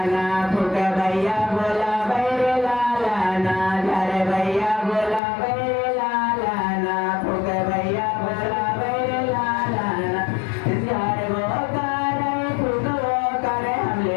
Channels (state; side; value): drops out; right; at 5.2 s